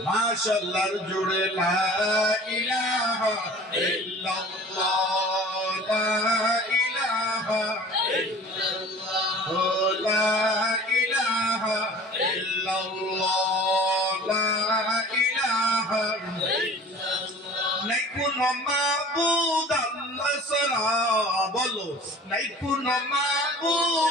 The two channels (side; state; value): both; normal; correlation 0.44